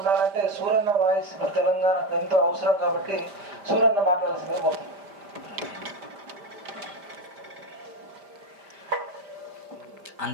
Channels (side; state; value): left; late; 5.0 ms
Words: సూరన్న వాయిస్ ఇప్పుడు తెలంగాణకు ఎంతో అవసరం కాబట్టి సూరన్న మాట్లాడాల్సిందే పోతుంది.